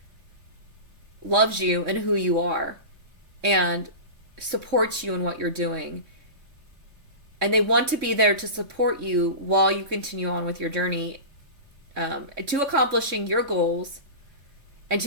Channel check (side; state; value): left; late; 3.6 ms